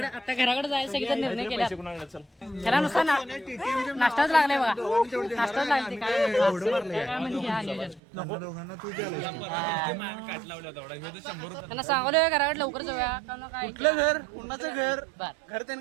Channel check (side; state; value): left; drops out; at 8.0 s